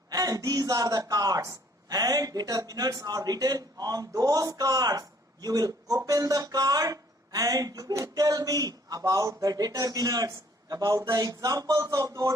and these are the cards and determinants are written on those cards. You will open the card and you will tell me about the determinants, about the examples of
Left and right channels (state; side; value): normal; both; correlation 0.61